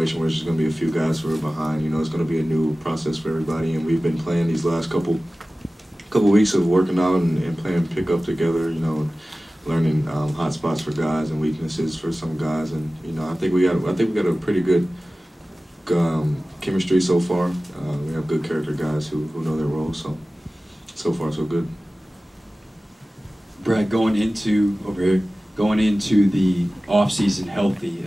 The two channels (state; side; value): normal; both; correlation 0.96